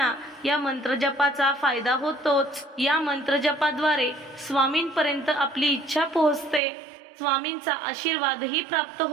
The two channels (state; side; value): drops out; left; at 6.6 s